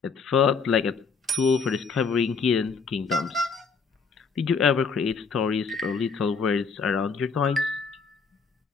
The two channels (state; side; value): quieter; right; 5.1 dB